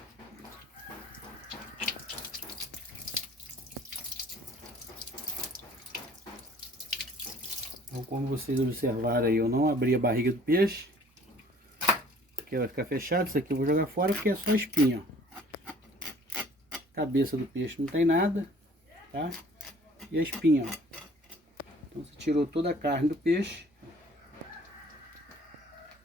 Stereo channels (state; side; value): normal; both; correlation 0.54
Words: Então, como vocês observaram aí, eu não abri a barriga do peixe, porque vai ficar fechado. Isso aqui eu vou jogar fora porque é só espinha, ó. Cabeça do peixe não tem nada, tá? E a espinha, ó. Então você tirou toda a carne do peixe,